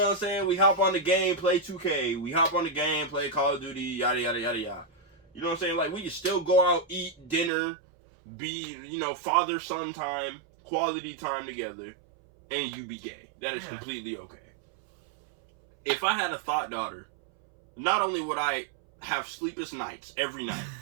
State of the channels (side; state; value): left; drops out; at 7.5 s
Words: what I'm saying? We hop on the game, play 2K. We hop on the game, play Call of Duty, yada, yada, yada, yada. You know what I'm saying? Like, we can still go out, eat dinner, be, you know, father-son time, quality time together, and you be gay. That is completely okay. If I had a thought daughter, not only would I have sleepless nights every night